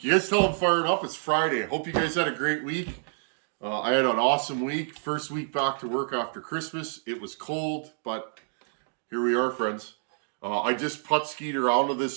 guys tell I'm fired up. It's Friday. I hope you guys had a great week. I had an awesome week. First week back to work after Christmas. It was cold, but here we are, friends. I just putt-skied around with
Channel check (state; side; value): silent; left; digital silence